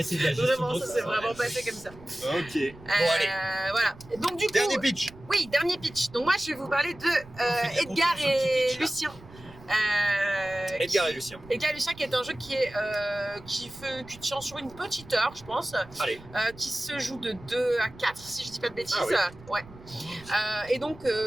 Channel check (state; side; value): noise; right; rumble, 20 dB below the sound